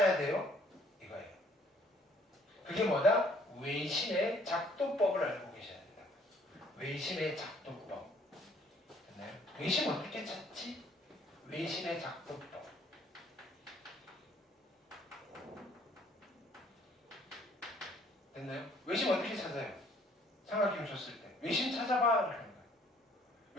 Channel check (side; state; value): both; normal; correlation 0.61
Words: 돼요? 이거예요. 그게 뭐다? 외심의 작도법을 알고 계셔야 된다. 외심의 작도법. 됐나요? 외심 어떻게 찾지? 외심의 작도법. 됐나요? 외심 어떻게 찾아요? 삼각형 줬을 때 외심 찾아봐 라는 거예요.